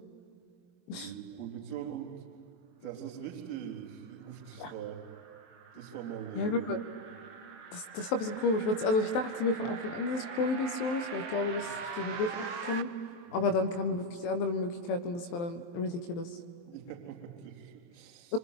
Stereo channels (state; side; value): late; right; 23 ms